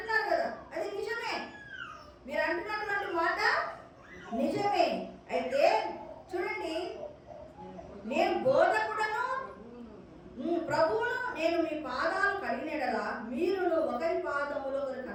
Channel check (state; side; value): identical; both; correlation 1.00